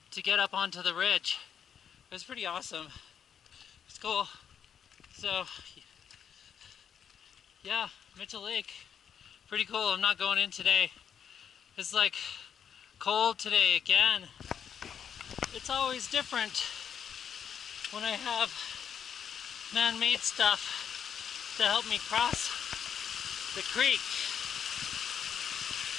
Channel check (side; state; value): right; quieter; 8.0 dB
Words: to get up onto the ridge. It was pretty awesome. It's cool. So yeah, Mitchell Lake, pretty cool. I'm not going in today. It's like cold today again. It's always different when I have man-made stuff to help me cross the creek.